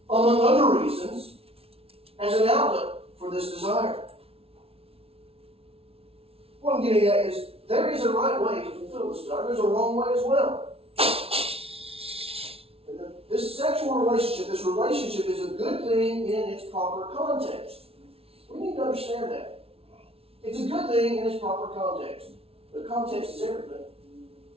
among other reasons, as an outlet for this desire. What I'm getting at is, there is a right way to fulfill this desire. There's a wrong way as well. And this sexual relationship, this relationship is a good thing in its proper context. We need to understand that. It's a good thing in its proper context. The context is everything.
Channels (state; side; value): late; left; 0.28 ms